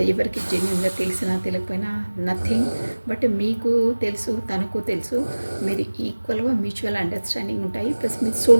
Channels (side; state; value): both; inverted; correlation -1.00